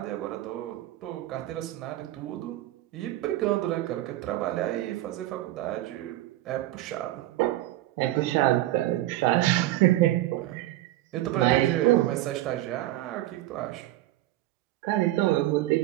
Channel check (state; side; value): quieter; left; 15.5 dB